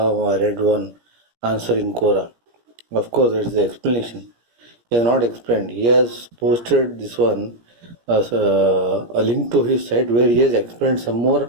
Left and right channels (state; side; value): late; left; 17 ms